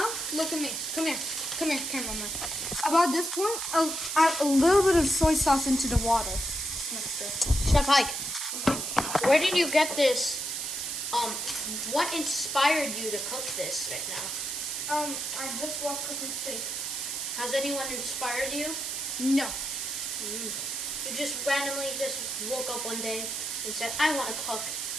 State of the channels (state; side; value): noise; right; hiss, 3 dB below the sound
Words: look at me. Come here, cameraman. About this point, I'll add a little bit of soy sauce into the water. Chef Hayk, where did you get this What inspired you to cook this right now? I just love cooking steak. Has anyone inspired you? No. You just randomly just woke up one day and said, I want to cook.